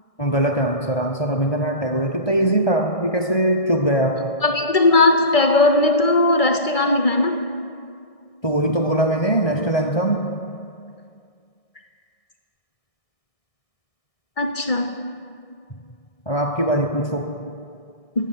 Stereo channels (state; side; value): late; right; 1.6 ms